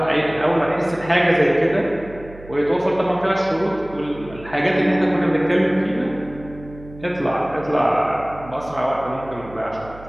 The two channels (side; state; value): right; noise; hum, 18 dB below the sound